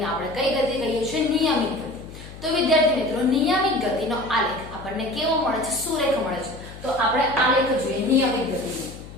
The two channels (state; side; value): noise; left; hum, 15 dB below the sound